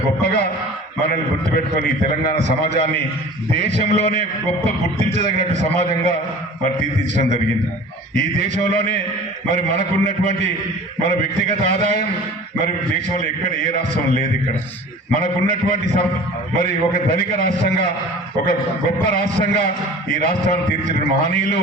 గొప్పగా మనల్ని గుర్తుపెట్టుకొని తెలంగాణ సమాజాన్ని దేశంలోనే గొప్ప గుర్తించదగినట్టు సమాజంగా మరి తీర్చిదిద్దడం జరిగింది. ఈ దేశంలోనే మరి మనకున్నటువంటి మన వ్యక్తిగత ఆదాయం మరి దేశంలో ఎక్కడ ఏ రాష్ట్రం లేదు. ఇక్కడ మనకున్నటువంటి మరి ఒక ధనిక రాష్ట్రంగా ఒక గొప్ప రాష్ట్రంగా ఈ రాష్ట్రాన్ని తీర్చిన మహనీయులు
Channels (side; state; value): both; normal; correlation 0.42